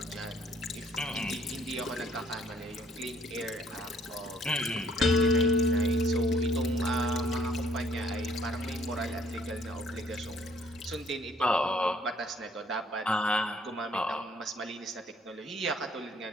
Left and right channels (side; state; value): both; normal; correlation 0.61